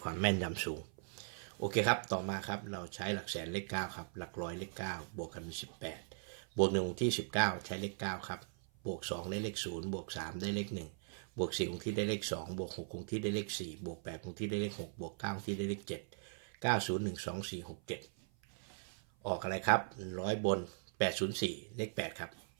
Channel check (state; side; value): silent; left; 52 dB below the other